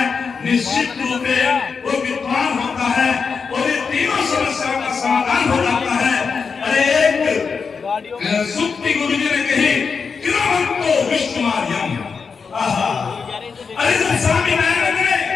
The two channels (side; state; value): right; quieter; 5.5 dB